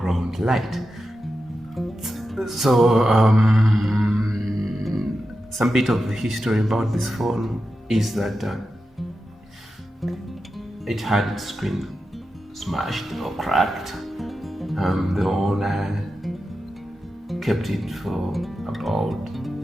light. So some bit of the history about this phone is that it had its screen smashed or cracked. The owner kept it for about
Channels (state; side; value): normal; both; correlation 0.90